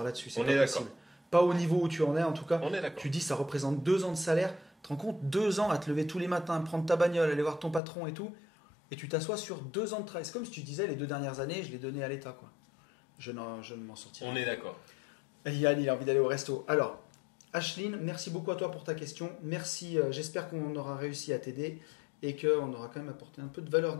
là-dessus. C'est On pas est d'accord. possible. Pas au niveau où tu en es, en tout cas. On est d'accord. Tu dis, ça représente 2 ans de salaire. Tu te rends compte, 2 ans à te lever tous les matins, prendre ta bagnole, aller voir ton patron et tout, et tu t'assois sur 2 ans de travail. C'est comme si tu disais, les 2 dernières années, je les donnais à l'État, quoi. Je ne m'en sortirai On est d'accord. Yann, il a envie d'aller au resto. Alors, Ashlyn, merci beaucoup à toi pour ta question. Merci, j'espère qu'on aura réussi à t'aider et qu'on aura quand même apporté un peu de valeur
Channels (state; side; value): drops out; right; at 7.8 s